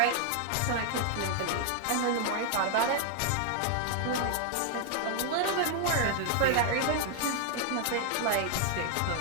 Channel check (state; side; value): different; both; correlation 0.00